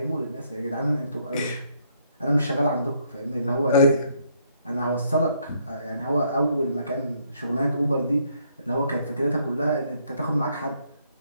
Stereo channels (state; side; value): inverted; both; correlation -0.70